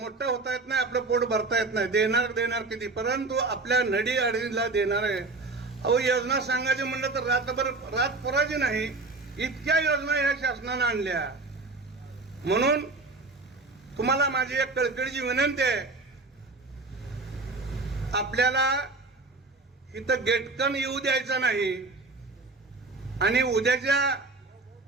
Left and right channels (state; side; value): quieter; left; 3.4 dB